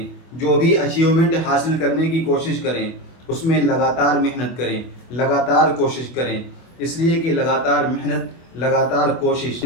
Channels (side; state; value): right; late; 24 ms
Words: جو بھی اچیومنٹ حاصل کرنے کی کوشش کریں، اس میں لگاتار محنت کریں، لگاتار کوشش کریں، اس لیے کہ لگاتار محنت، لگاتار کوشش